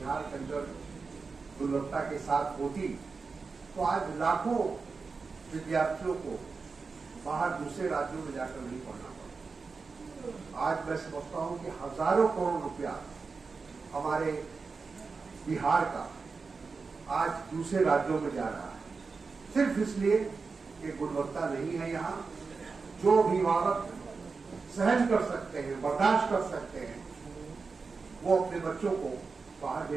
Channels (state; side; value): quieter; left; 4.6 dB